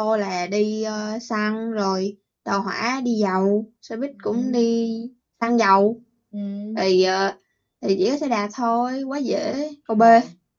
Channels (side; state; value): both; identical; correlation 1.00